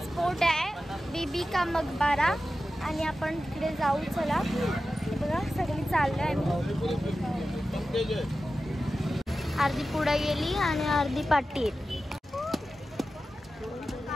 स्पॉट आहे बीबी का मकबरा. आणि आपण तिकडे जाऊ. चला बघा सगळी चाललोय आम्ही. अर्धी पुढे गेली आणि अर्धी पाठी.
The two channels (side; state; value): both; normal; correlation 0.93